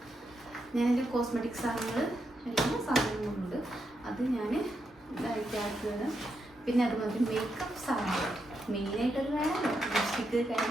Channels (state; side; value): normal; both; correlation 0.83